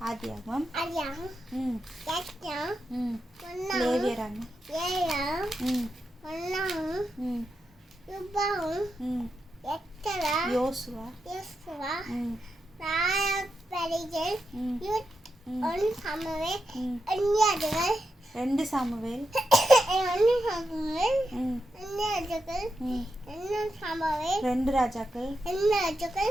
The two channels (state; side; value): normal; both; correlation 0.87